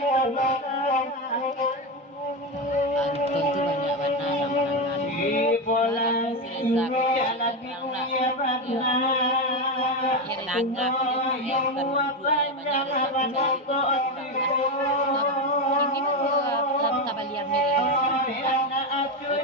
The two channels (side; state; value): both; normal; correlation 0.13